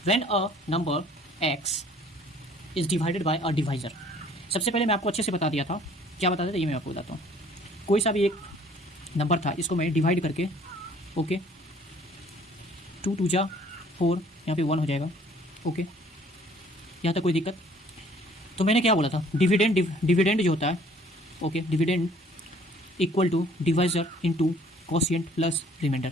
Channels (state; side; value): normal; both; correlation 0.56